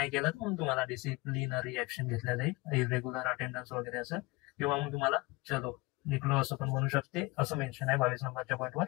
केलं तर मग तुम्हाला डिसिप्लिनरी ऍक्शन घेतल्या जाईल, इरेग्युलर अटेंडन्स वगैरे असं, किंवा मग तुम्हाला चलो निघलो असं पण म्हणू शकते, असं मेन्शन आहे 22 नंबरच्या पॉईंटवर.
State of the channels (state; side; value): quieter; right; 23.9 dB